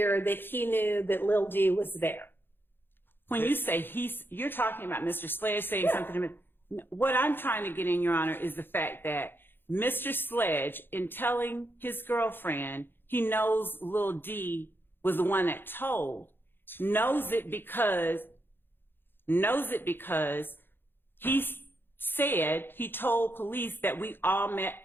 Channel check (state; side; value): late; right; 0.10 ms